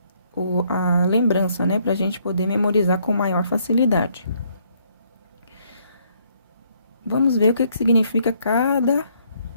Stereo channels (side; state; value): both; inverted; correlation -0.69